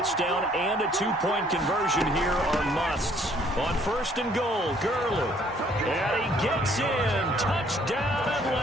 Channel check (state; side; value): normal; both; correlation 0.62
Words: and a 2-point conversion here are musts. On 1st and goal, Gurley. And he gets in. Touchdown,